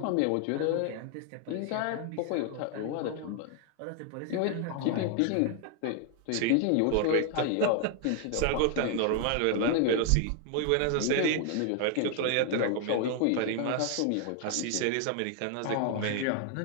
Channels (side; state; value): both; different; correlation 0.00